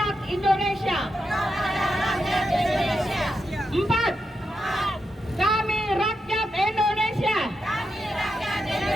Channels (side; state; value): both; normal; correlation 0.86